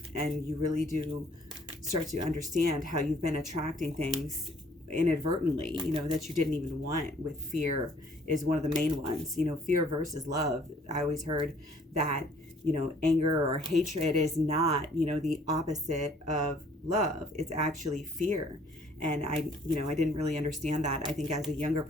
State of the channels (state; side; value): normal; both; correlation 0.59